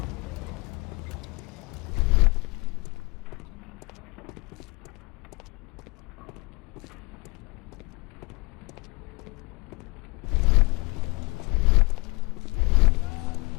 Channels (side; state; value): right; quieter; 25.9 dB